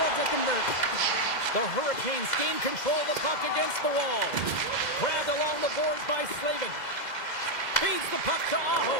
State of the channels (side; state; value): right; late; 2.0 ms